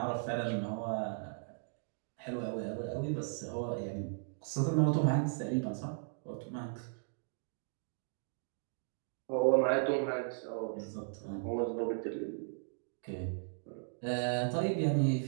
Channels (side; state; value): left; silent; digital silence